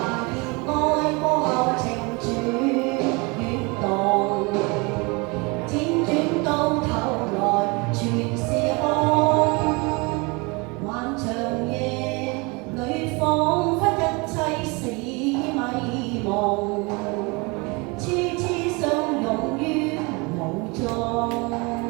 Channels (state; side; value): quieter; left; 27.8 dB